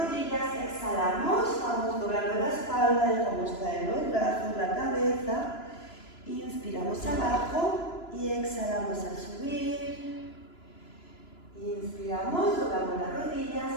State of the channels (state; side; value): late; right; 2.9 ms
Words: exhalamos, vamos doblando la espalda, dejamos caer los brazos, la cabeza. Inspiramos abajo y exhalamos al subir. Inspiramos, doblamos las rodillas,